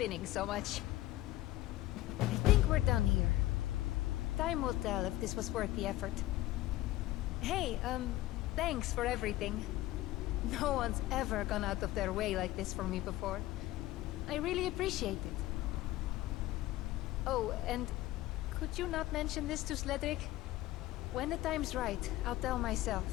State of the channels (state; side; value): quieter; right; 16.3 dB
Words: so much. I think we're done here. Time will tell if this was worth the effort. Hey, thanks for everything. No one's ever gone out of their way like this for me before. I really appreciate it. Oh, and could you not mention this to Sledric? When the time's right, I'll tell